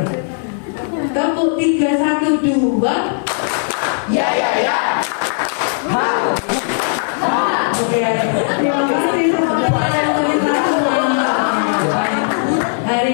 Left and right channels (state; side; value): silent; right; 55 dB below the other